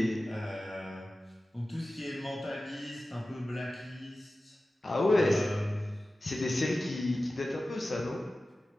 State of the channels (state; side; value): normal; both; correlation 0.95